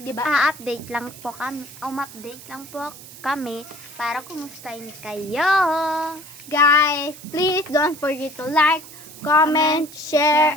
ba? Update lang po kami, update lang po kami para kumustahin kayo. Guys, please don't forget to like, comment, share,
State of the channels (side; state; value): right; noise; hiss, 17 dB below the sound